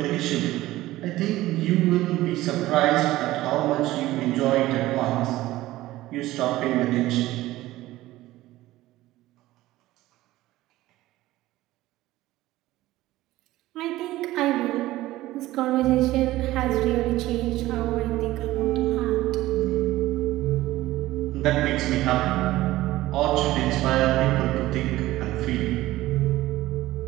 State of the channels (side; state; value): left; quieter; 16.6 dB